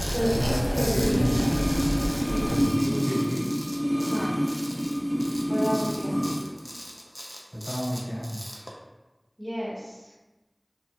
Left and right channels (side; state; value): both; identical; correlation 1.00